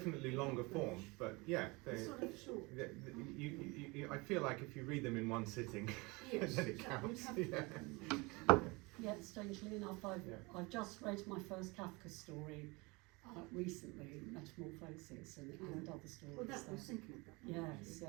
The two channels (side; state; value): left; quieter; 25.8 dB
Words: longer form, but yeah, they're sort of short. I feel like if you read them in one sitting, Yes, then it you'd counts. have Yeah. Yeah, strangely enough, I've just read my first Kafka story recently, Metamorphosis, and other stories. Well, that there. was thinking of that. Yes, yeah.